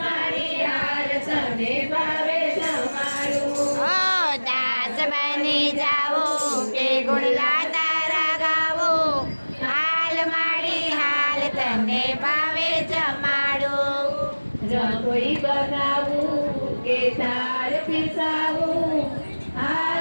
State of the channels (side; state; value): both; inverted; correlation -1.00